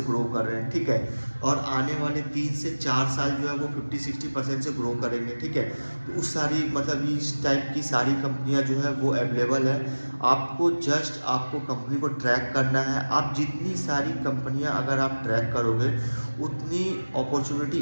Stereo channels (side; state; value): both; inverted; correlation -1.00